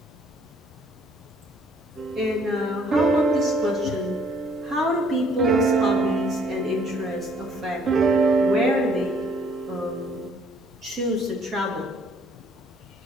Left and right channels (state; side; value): normal; both; correlation 0.62